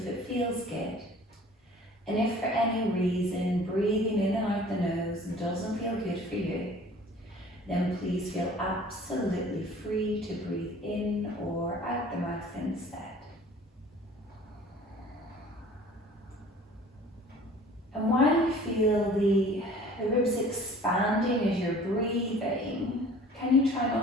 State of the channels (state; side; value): normal; both; correlation 0.48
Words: it feels good. And if for any reason breathing in and out the nose doesn't feel good for you, then please feel absolutely free to breathe in or out the mouth instead. And while you feel the ribs expanding as you're breathing, can you try